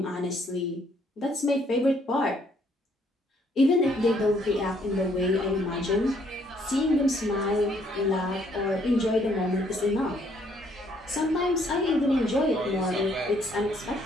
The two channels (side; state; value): both; normal; correlation 0.67